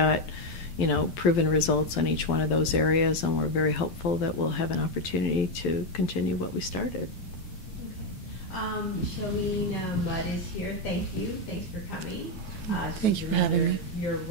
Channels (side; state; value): right; late; 12 ms